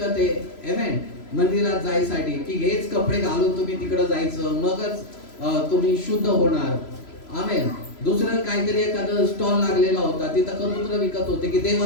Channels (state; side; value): late; right; 3.0 ms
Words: आहे. आमेन, मंदिरात जायसाठी की हेच कपडे घालून तुम्ही तिकडे जायचं, मगच तुम्ही शुद्ध होणार. आमेन. दुसरं काहीतरी एखादं स्टॉल लागलेला होता, तिथं कबूतर विकत होते की